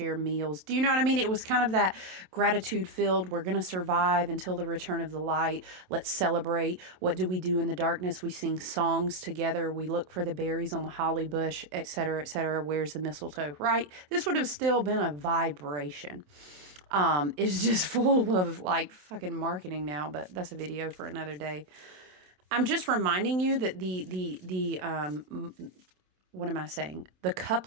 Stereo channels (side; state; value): left; late; 27 ms